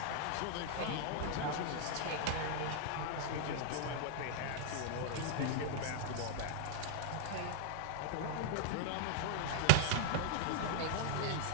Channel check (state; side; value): different; both; correlation -0.01